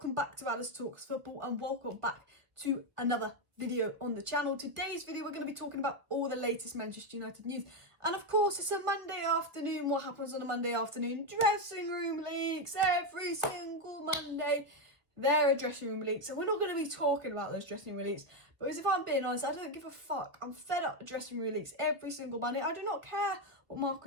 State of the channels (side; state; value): left; late; 1.2 ms